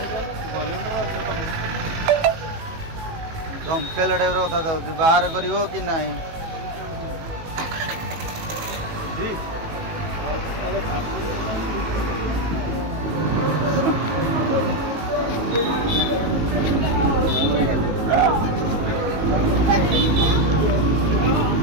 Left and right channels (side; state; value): left; late; 19 ms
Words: धमकेला टाइप कथा जाऊँ बाहर कर कि नहीं